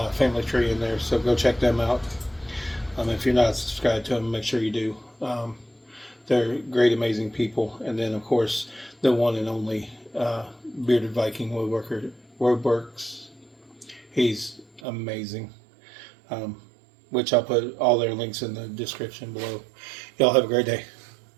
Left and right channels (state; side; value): drops out; left; at 14.8 s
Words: Family Tree in there, so go check them out. If you're not subscribed to them, make sure you do. They're great, amazing people. And then, of course, the one and only Bearded Viking-WoodWorks. He's amazing. Which I'll put all their links in the description below. Y'all have a great day.